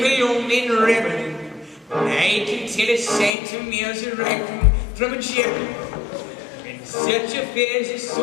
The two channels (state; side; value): drops out; right; at 3.3 s